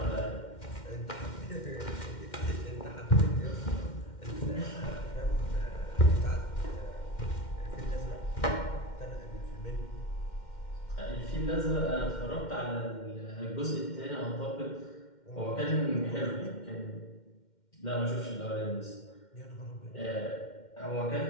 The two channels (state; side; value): late; right; 2.1 ms